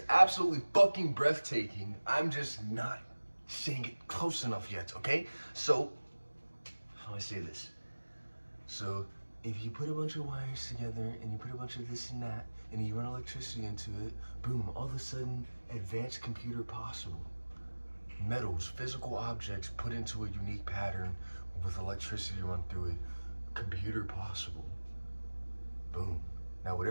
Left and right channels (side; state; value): both; inverted; correlation -1.00